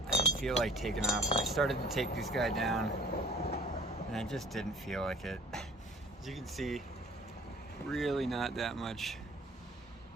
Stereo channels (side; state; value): both; normal; correlation 0.51